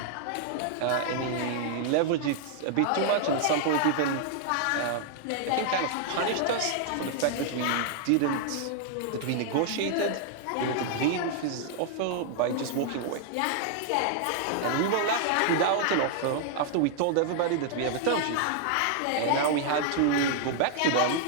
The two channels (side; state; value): both; different; correlation -0.01